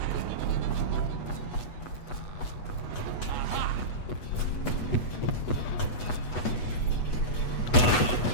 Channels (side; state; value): right; late; 8.2 ms